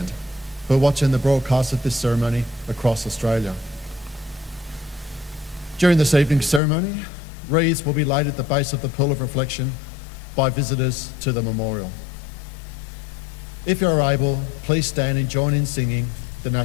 who are watching the broadcast of this ceremony across Australia. During this evening's ceremony, wreaths will be laid at the base of the Pool of Reflection by visitors to the memorial. If you're able, please stand and join in singing the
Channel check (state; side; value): drops out; right; at 6.6 s